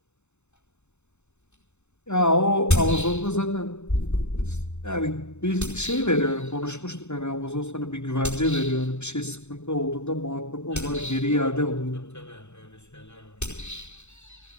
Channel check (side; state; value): right; late; 0.82 ms